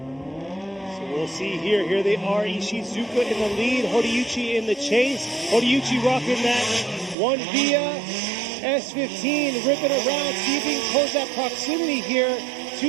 So we'll see here. Here they are. Ishizuka in the lead. Horiuchi in the chase. Horiuchi rocking that one via S15, ripping around, see if he can close that proximity here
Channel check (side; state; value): left; drops out; at 7.2 s